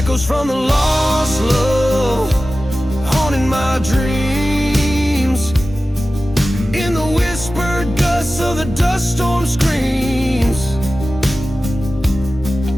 from the lost love, haunting my dreams, in the whispered gusts of the dust storm screams.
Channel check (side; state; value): both; normal; correlation 0.95